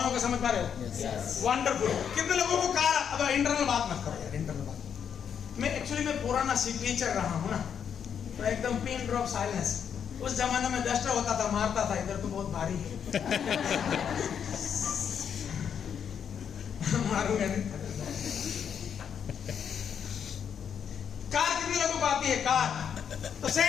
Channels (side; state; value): right; quieter; 7.9 dB